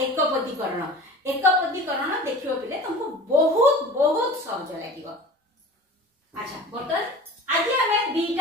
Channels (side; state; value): both; normal; correlation 0.39